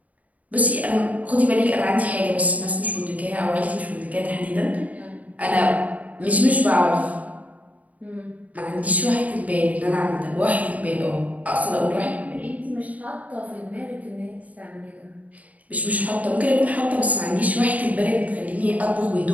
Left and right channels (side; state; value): left; late; 0.072 ms